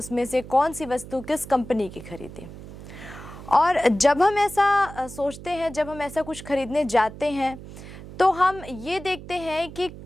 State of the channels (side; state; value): right; noise; hum, 14 dB below the sound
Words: से कौन सी वस्तु किस कंपनी की खरीदें। और जब हम ऐसा सोचते हैं, जब हम ऐसा कुछ खरीदने जाते हैं तो हम ये देखते हैं कि